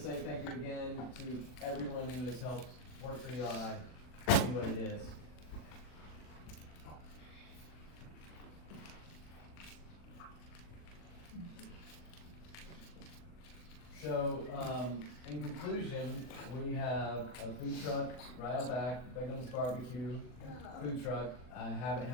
say thank you again to everyone who has helped Work4Eli be what it is. So, in conclusion, we have a food truck right out back, Begum's Barbecue food truck. I haven't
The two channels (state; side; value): late; right; 40 ms